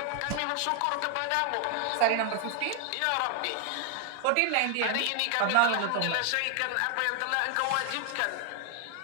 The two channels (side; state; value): both; different; correlation 0.00